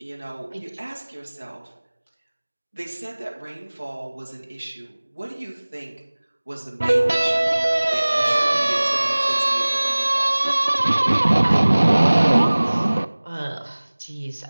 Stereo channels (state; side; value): inverted; both; correlation -1.00